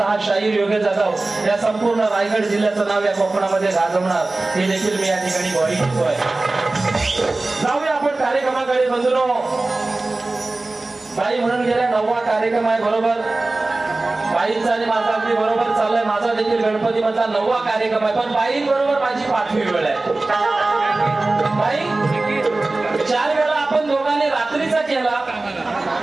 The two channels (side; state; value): left; quieter; 3.1 dB